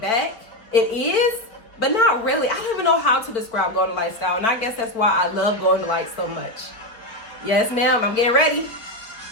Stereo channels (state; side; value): late; right; 4.2 ms